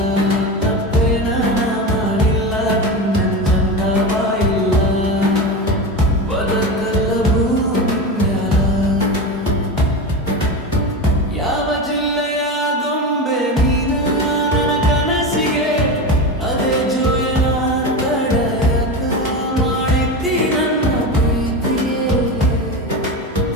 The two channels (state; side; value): normal; both; correlation 0.22